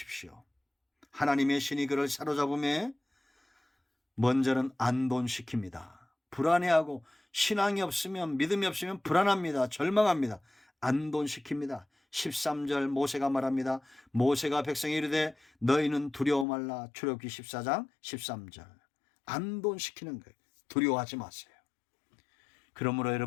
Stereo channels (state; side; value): drops out; right; at 16.4 s